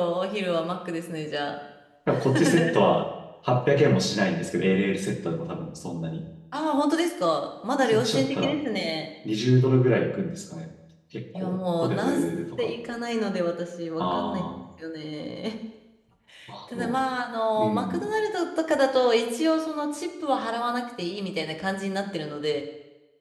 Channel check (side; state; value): both; identical; correlation 1.00